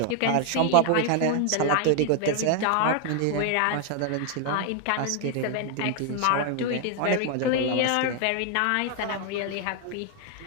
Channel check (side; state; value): both; different; correlation 0.00